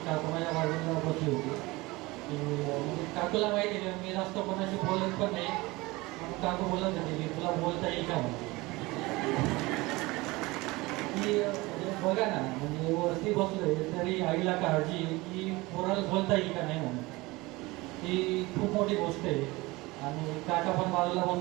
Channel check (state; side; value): quieter; left; 22.0 dB